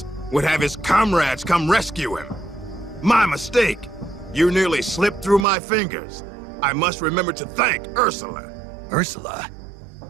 would have his comrades come rescue him. My mistake. You nearly slipped through my fingers. I must remember to thank Ursula. Ursula?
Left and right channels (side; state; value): left; drops out; at 5.5 s